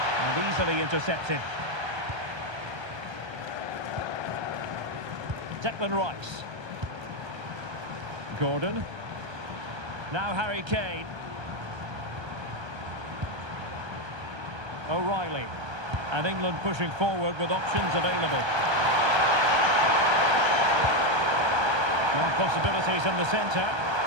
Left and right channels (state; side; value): late; left; 1.3 ms